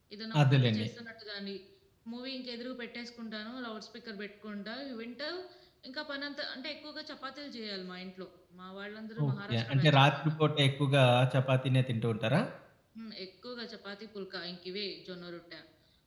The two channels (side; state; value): both; identical; correlation 1.00